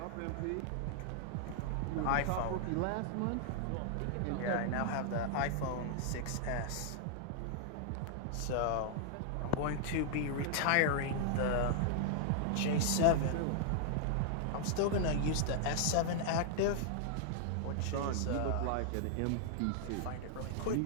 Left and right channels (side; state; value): both; different; correlation 0.00